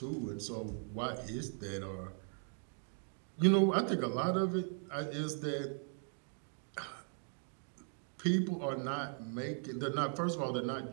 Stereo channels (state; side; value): silent; left; 52 dB below the other